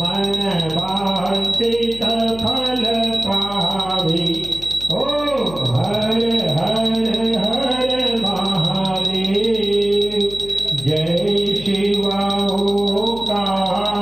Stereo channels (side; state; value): left; noise; hum, 15 dB below the sound